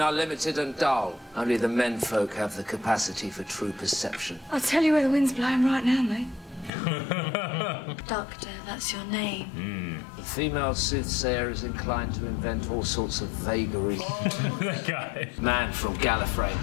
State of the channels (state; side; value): drops out; right; at 6.7 s